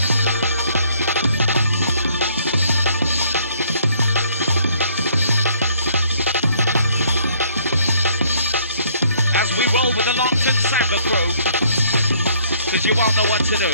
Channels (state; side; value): inverted; both; correlation -0.63